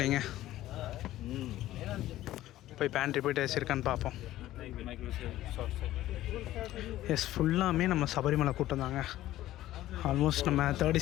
போய் பேண்ட்ரி போயிட்டு ஏசி இருக்கான்னு பார்ப்போம். எஸ், ஃபுல்லாமே நம்ம சபரிமலை கூட்டம் தாங்க. ஆல்மோஸ்ட் நம்ம 3rd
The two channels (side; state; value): right; quieter; 14.6 dB